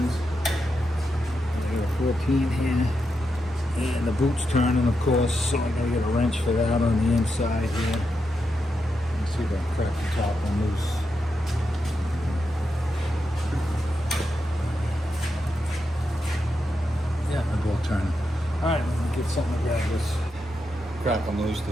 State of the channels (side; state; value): both; normal; correlation 0.85